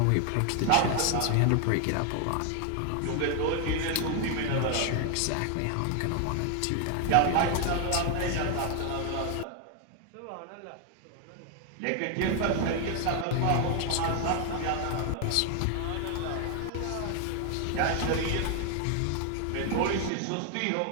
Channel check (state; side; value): different; both; correlation 0.01